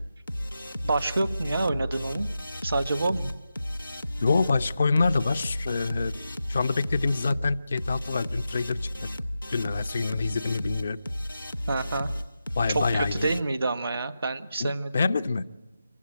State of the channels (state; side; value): inverted; both; correlation -0.90